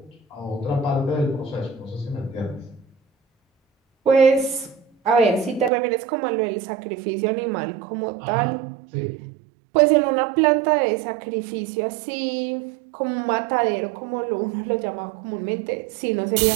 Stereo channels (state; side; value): drops out; left; at 5.7 s